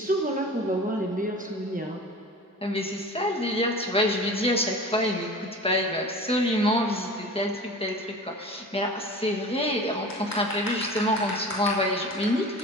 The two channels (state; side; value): normal; both; correlation 0.37